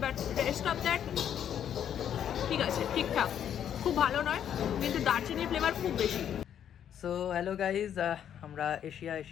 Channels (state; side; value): quieter; right; 9.5 dB